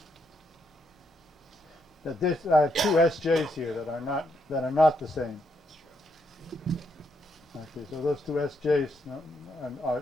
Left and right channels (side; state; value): both; normal; correlation 0.77